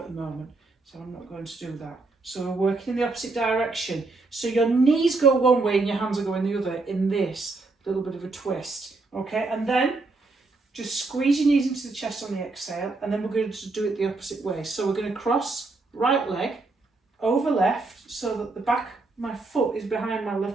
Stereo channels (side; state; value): left; quieter; 3.5 dB